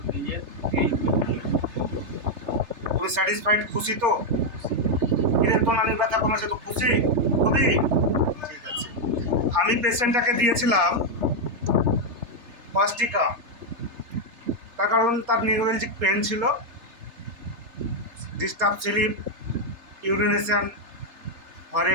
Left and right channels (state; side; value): late; left; 3.3 ms